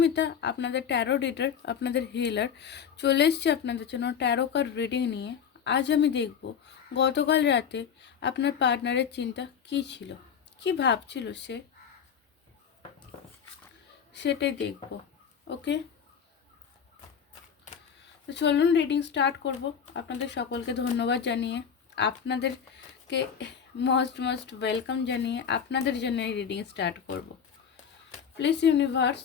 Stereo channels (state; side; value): quieter; right; 7.5 dB